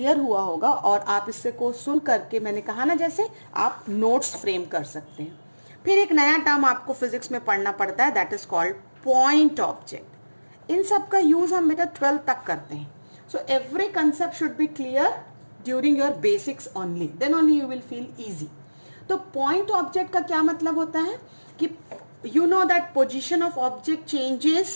हुआ होगा और आप इससे को सुन करके, मैंने कहा ना जैसे, आप नोट्स फ्रेम कर सकते हैं। फिर एक नया टर्म आपको फिजिक्स में पढ़ना पड़ता है, that is called point object. इन सब का यूज हम बेटा 12th तक करते हैं। So every concept should be clear during your basics only, then only you will feel easy. तो पॉइंट ऑब्जेक्ट का क्या मतलब होता है कि you know that position of object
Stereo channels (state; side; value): inverted; both; correlation -1.00